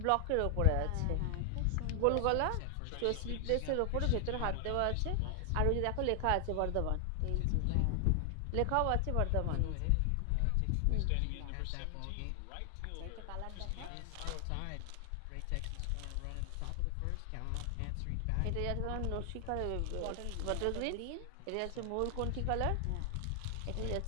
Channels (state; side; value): different; both; correlation 0.00